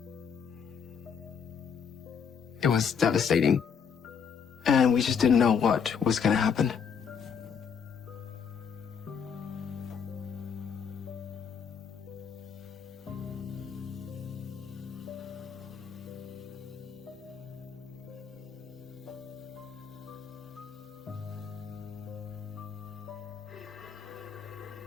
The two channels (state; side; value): quieter; right; 6.8 dB